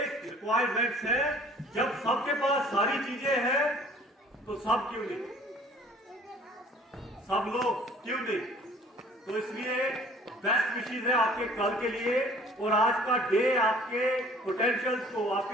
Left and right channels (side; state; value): both; normal; correlation 0.52